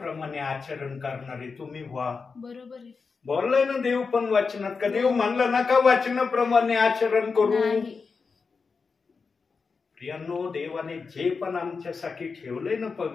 आचरण करणारे तुम्ही व्हा. बरोबर आहे. बोललाय ना देव पण वचनात, का देव म्हणलं ना का वचनाप्रमाणे आचरण करू? नाही. प्रियांनो, देवाने जे पण आमच्यासाठी ठेवलंय ना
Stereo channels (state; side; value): quieter; right; 4.9 dB